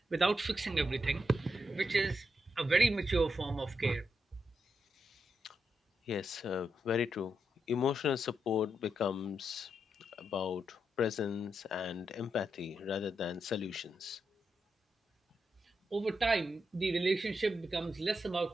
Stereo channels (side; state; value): both; normal; correlation 0.83